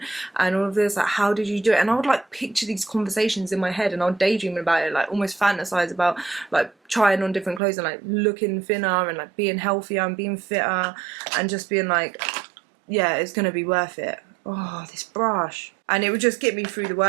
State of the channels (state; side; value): drops out; left; at 7.6 s